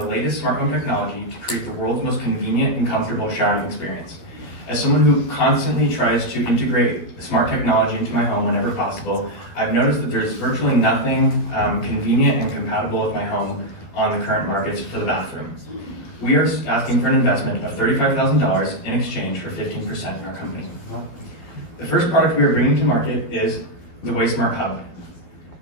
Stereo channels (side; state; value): right; late; 12 ms